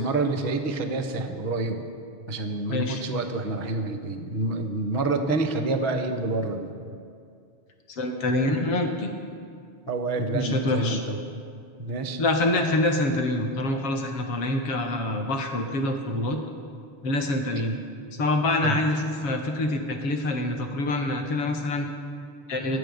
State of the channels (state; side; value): late; right; 7.2 ms